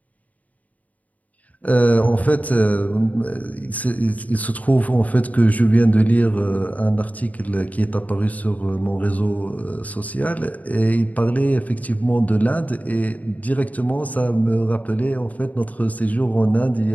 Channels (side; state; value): right; late; 0.073 ms